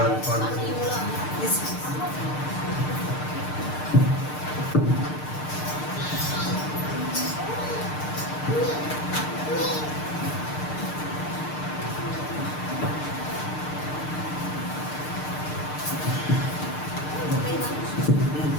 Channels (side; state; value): right; late; 6.6 ms